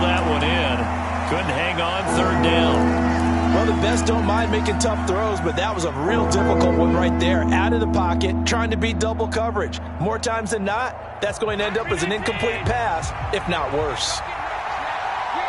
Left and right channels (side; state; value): both; identical; correlation 1.00